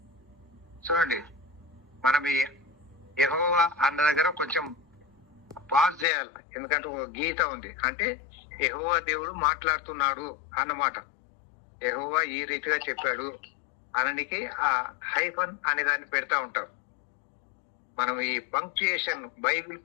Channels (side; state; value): right; drops out; at 6.1 s